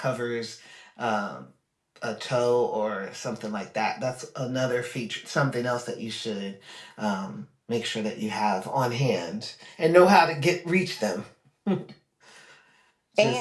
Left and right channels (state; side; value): identical; both; correlation 1.00